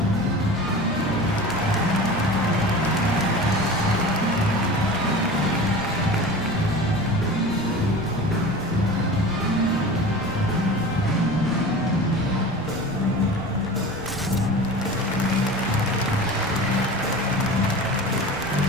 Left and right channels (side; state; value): left; noise; rumble, 19 dB below the sound